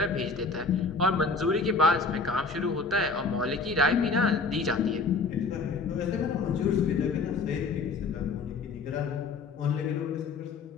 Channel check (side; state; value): right; quieter; 4.1 dB